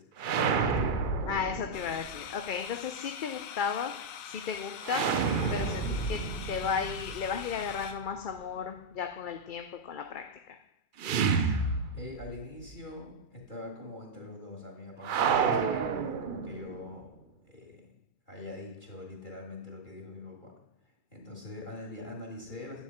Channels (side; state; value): right; late; 2.3 ms